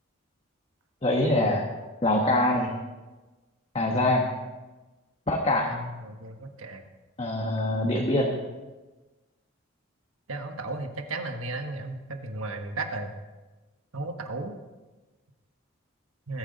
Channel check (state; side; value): normal; both; correlation 0.24